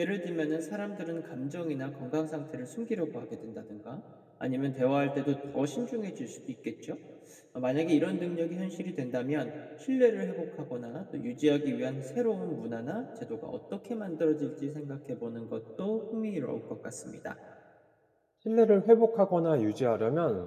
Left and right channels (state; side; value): identical; both; correlation 1.00